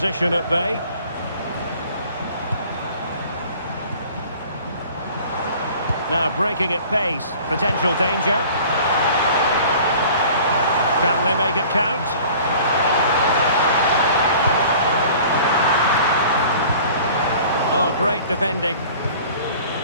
at bay. Now breaking at pace. Potential danger. Can they make it count? Oh, great defending.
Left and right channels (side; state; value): both; inverted; correlation -0.47